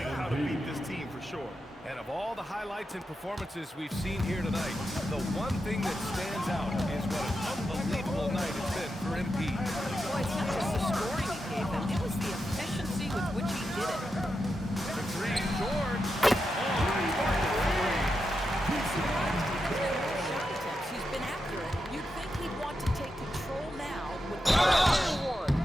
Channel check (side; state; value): both; normal; correlation 0.87